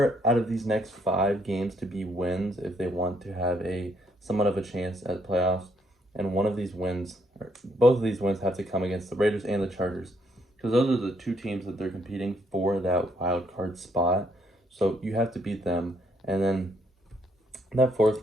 out of these next 5 games to be wins if they want to have a somewhat of a chance at playoffs. And one of these wins, or both of these wins, have to come against the Raiders and the Chargers, because those are the 2 teams that they're competing for that wild card spot. So you have to beat them. And then that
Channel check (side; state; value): both; normal; correlation 0.71